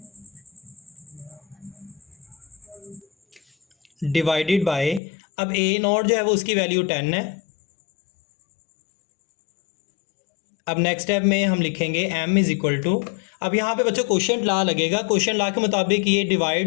डिवाइडेड बाय, अब ए नॉट जो है वो उसकी वैल्यू 10 है। अब नेक्स्ट स्टेप में हम लिखेंगे m इज़ इक्वल टू, अब यहाँ पे बच्चों क्वेश्चन ला लगेगा, क्वेश्चन ला के मुताबिक ये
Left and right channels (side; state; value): right; drops out; at 5.0 s